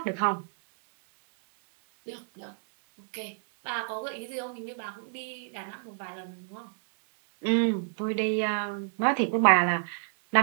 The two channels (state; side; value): silent; left; 59 dB below the other